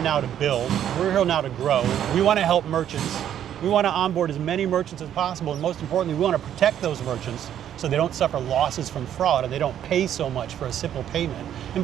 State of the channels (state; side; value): quieter; left; 10.3 dB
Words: to build. We're here now to grow. We want to help merchants. We want to onboard as many merchants as possible. And most importantly, we want to protect those merchants so they don't suffer losses from fraud and they don't pay so much for a simple payment. And